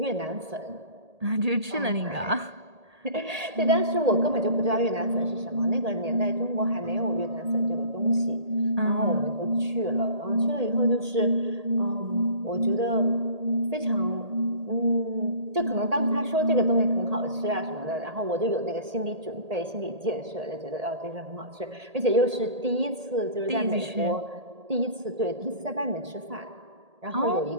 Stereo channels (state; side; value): late; left; 1.8 ms